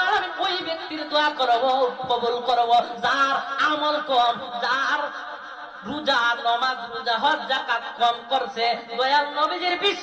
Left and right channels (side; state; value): both; identical; correlation 1.00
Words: আলামিন ওই ব্যক্তির দোয়া করব, কবুল করব যার আমল কম, যার রোজা নামাজ রোজা হজ যাকাত কম করছে, দয়াল নবীজির